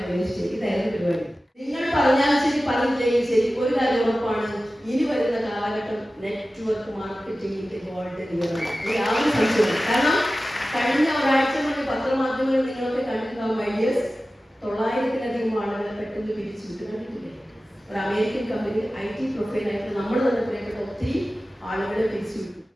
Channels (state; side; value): normal; both; correlation 0.95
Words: ചെയ്തു. ഇതായിരുന്നു പരിപാടി. നിങ്ങൾ പറഞ്ഞാൽ ശരി, പറഞ്ഞില്ലെങ്കിൽ ശരി, ഒരു കാര്യം ഉറപ്പാണ്, ഇനി വരുന്ന കാലഘട്ടം നെറ്റ്വർക്ക് മാർക്കറ്റിംഗിന്റെ ഗോൾഡൻ ഇയറാണ്. യാതൊരു സംശയമില്ല. കാരണം കഴിഞ്ഞ ഒരാഴ്ച മുന്നേ പത്രമാധ്യമങ്ങളിൽ നിങ്ങളൊക്കെ കണ്ടിട്ടുണ്ടാവും ഐഡിയസ് 900-ലധികം ആളുകളെ പെട്ടെന്ന് പിരിച്ചു വിട്ട് കണ്ടിട്ടില്ലേ? ഒരു അമേരിക്കൻ കമ്പനി IT പ്രൊഫൈലായിട്ട് നമ്മൾ തന്നെ പറയപ്പെട്ട ഒത്തിരി ആളുകളെ പിരിച്ചു വിട്ടു.